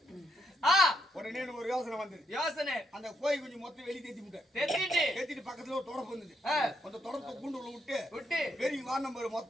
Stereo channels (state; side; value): normal; both; correlation 0.77